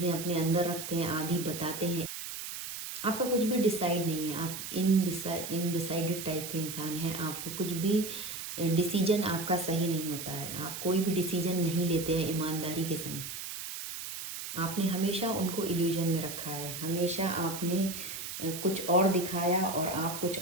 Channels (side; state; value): right; noise; hiss, 7 dB below the sound